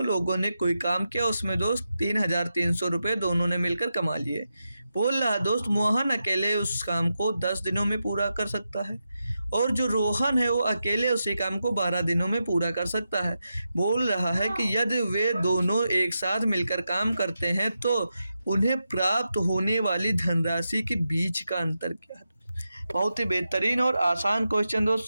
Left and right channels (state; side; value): inverted; both; correlation -0.88